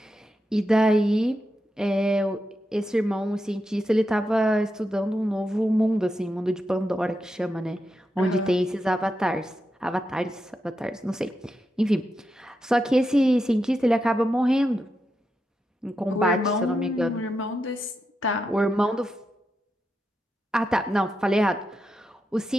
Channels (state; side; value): normal; both; correlation 0.87